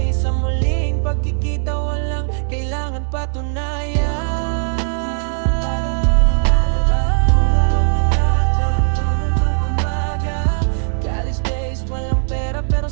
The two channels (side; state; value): left; silent; 67 dB below the other